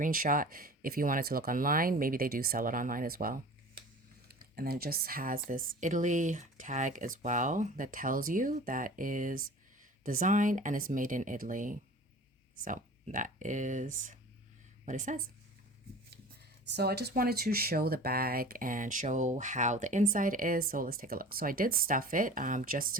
if you wanted to look online. Maybe they do sell it online as well. And then it just has this Italy tag as well that tells you that is designed and is made in Italy. So that is what it says. So I just wanted to show the bag and show how the inside is. So let's take a look. So I did stuff it just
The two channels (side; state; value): both; normal; correlation 0.40